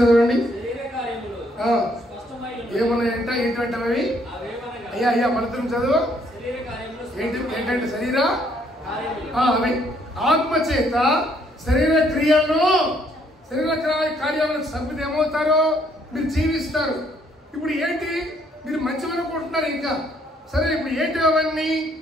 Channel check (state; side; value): normal; both; correlation 0.67